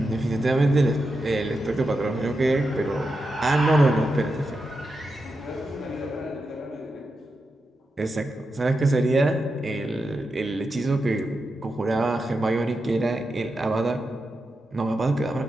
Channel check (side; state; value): both; normal; correlation 0.88